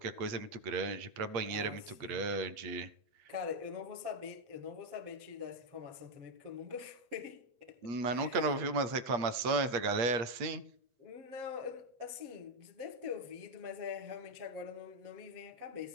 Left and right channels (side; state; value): left; late; 8.5 ms